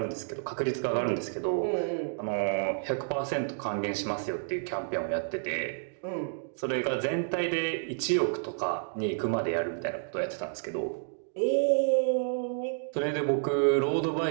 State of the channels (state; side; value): silent; left; digital silence